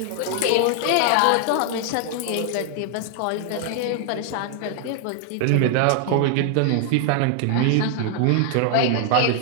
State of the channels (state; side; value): different; both; correlation 0.00